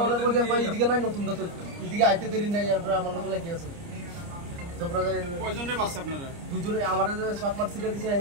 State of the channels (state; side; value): late; left; 29 ms